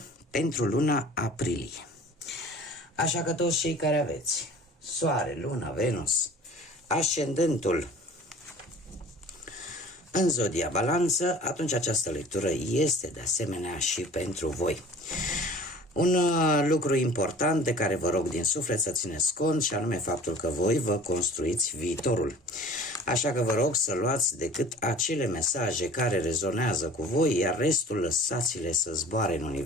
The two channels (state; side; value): normal; both; correlation 0.45